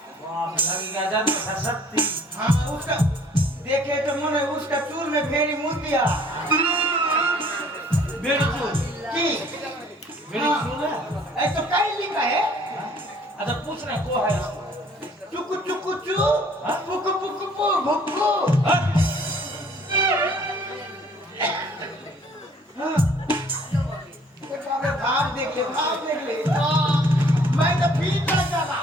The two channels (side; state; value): both; normal; correlation 0.57